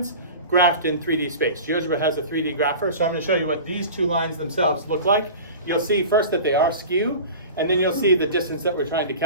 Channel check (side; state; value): both; inverted; correlation -0.35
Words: graphed in 3D space. GeoGebra has a 3D grapher, so I'm going to show you what these two lines themselves look like. You'll see first that they are skew, and then you'll see the distance that we're trying to